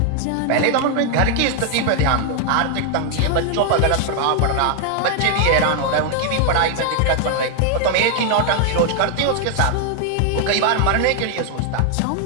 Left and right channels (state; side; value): different; both; correlation 0.00